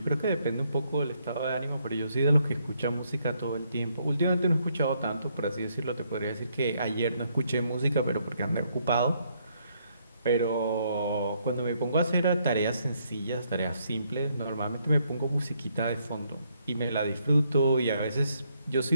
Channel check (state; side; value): inverted; both; correlation -0.73